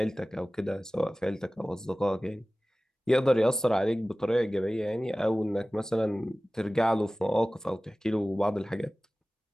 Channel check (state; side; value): normal; both; correlation 0.97